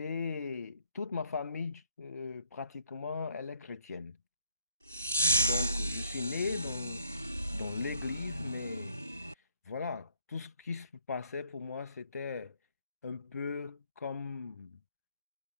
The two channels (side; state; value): both; inverted; correlation -0.69